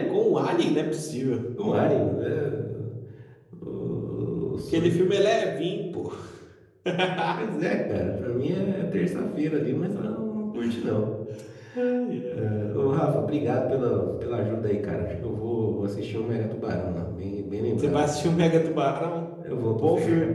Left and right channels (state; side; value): identical; both; correlation 1.00